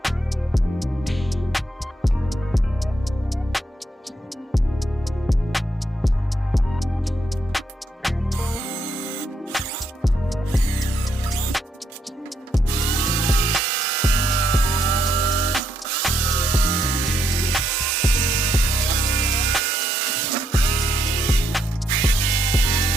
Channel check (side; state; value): both; normal; correlation 0.76